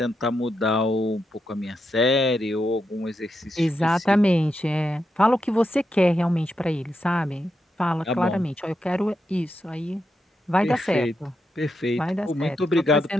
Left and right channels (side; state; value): both; normal; correlation 0.84